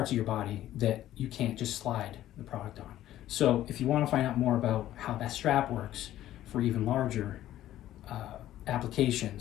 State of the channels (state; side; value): quieter; right; 13.3 dB